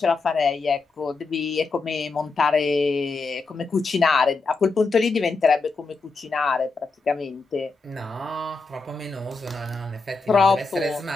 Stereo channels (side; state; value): right; quieter; 4.1 dB